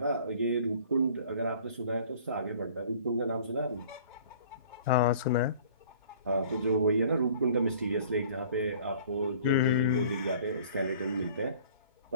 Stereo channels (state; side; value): inverted; both; correlation -0.50